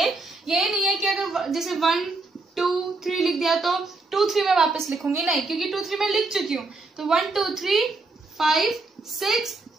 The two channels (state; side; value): quieter; left; 3.5 dB